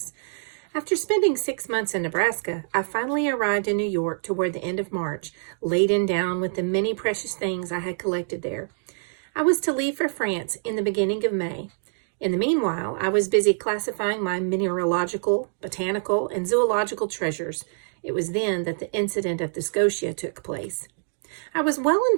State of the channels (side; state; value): left; silent; digital silence